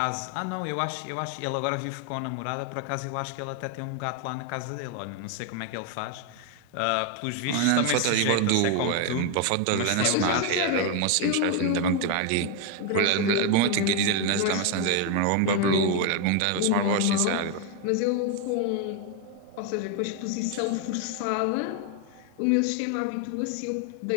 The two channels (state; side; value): different; both; correlation 0.01